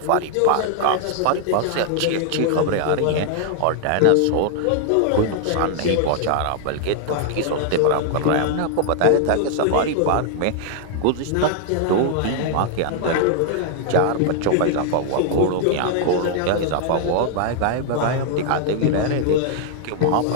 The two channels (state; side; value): different; both; correlation 0.00